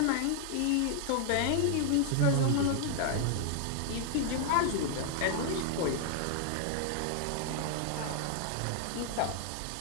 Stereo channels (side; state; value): both; different; correlation 0.00